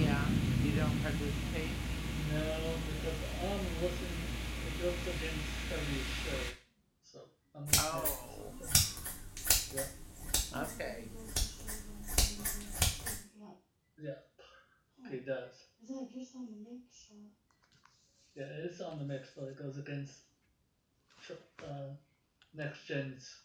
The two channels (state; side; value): identical; both; correlation 1.00